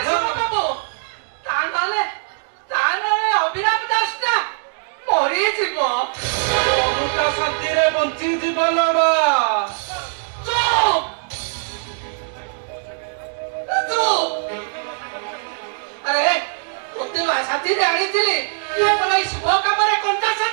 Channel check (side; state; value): left; silent; digital silence